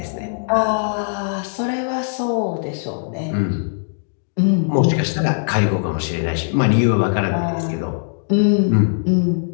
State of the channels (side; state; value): right; silent; digital silence